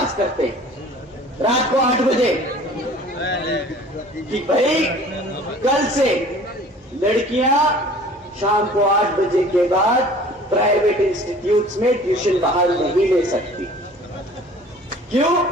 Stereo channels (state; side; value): normal; both; correlation 0.48